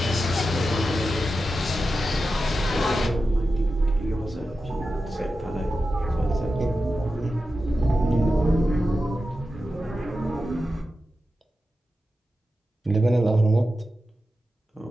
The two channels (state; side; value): normal; both; correlation 0.91